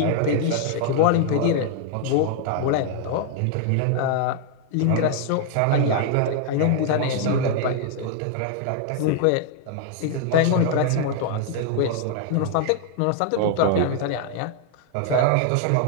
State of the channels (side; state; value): both; different; correlation 0.00